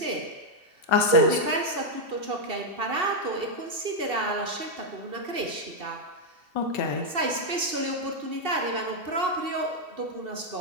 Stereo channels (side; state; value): left; late; 2.7 ms